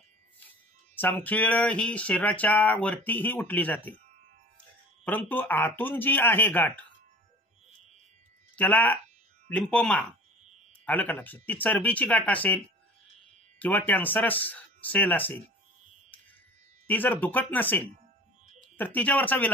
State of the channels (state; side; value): normal; both; correlation 0.42